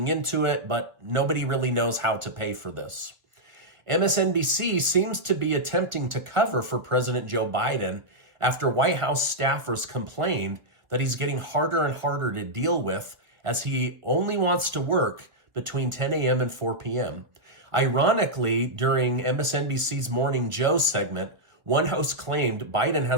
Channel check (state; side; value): late; left; 1.4 ms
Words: into it, but nobody really knows how to pay for this. MSNBC seems to be attempting to cover for President Joe Biden after White House staffers complained that he's getting harder and harder to deal with as he only wants to work between 10 a.m. and 4 p.m. Ironically, during MSNBC's Morning Joe segment, one host claimed Biden